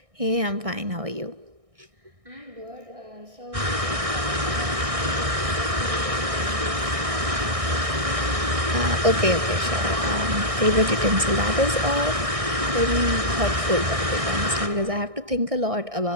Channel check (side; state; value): left; late; 1.6 ms